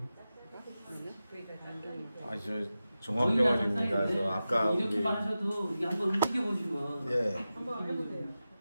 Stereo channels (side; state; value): both; inverted; correlation -0.93